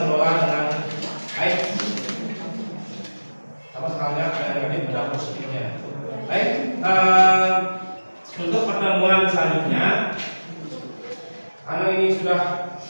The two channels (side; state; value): both; inverted; correlation -1.00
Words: dengan baik. Sama sekali ada negatif ada positifnya.